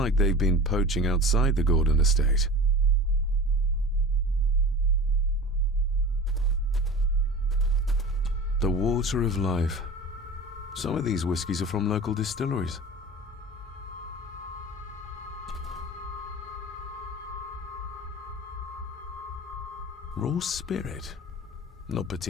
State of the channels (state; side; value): normal; both; correlation 0.35